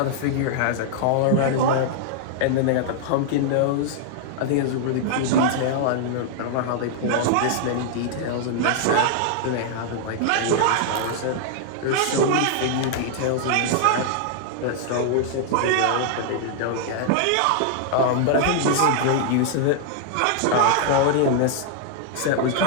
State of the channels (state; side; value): different; both; correlation 0.00